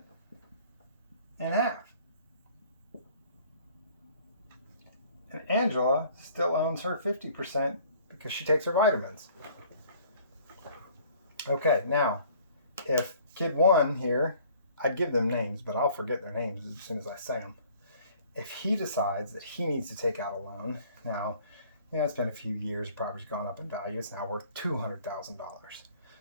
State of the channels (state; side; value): inverted; both; correlation -0.54